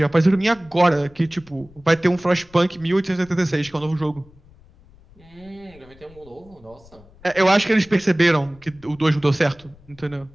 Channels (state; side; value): noise; left; rumble, 25 dB below the sound